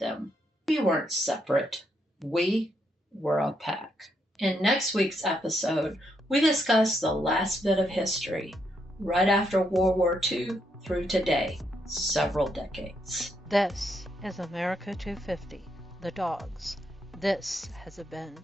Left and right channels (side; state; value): both; normal; correlation 0.77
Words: We weren't separate. We were a pack. In next week's episode, we discuss the last bit of history, right after World War II through today, several decades. This is America 250, The Dogs. This has been